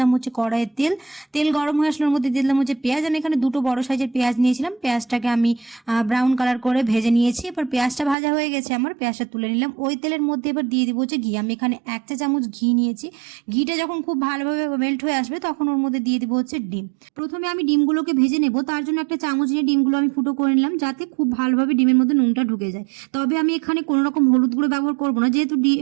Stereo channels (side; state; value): left; drops out; at 8.2 s